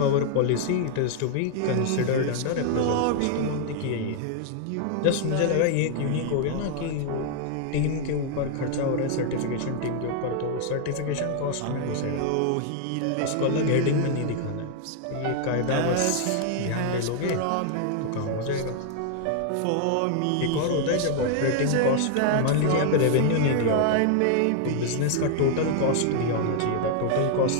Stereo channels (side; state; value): both; different; correlation 0.00